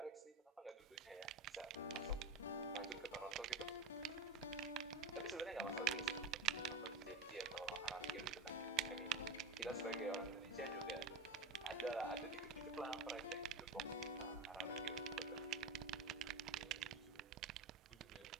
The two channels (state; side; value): quieter; left; 3.3 dB